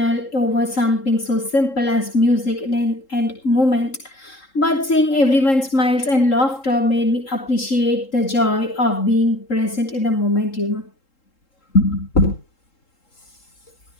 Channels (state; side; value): late; right; 3.7 ms